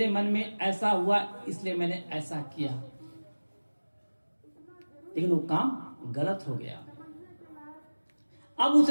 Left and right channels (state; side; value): inverted; both; correlation -1.00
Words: मन में ऐसा हुआ इसलिए मैंने ऐसा किया, लेकिन वो काम गलत हो गया। अब